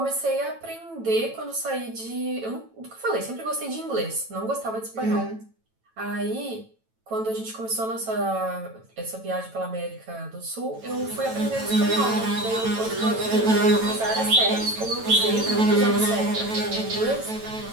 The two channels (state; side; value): late; left; 9.1 ms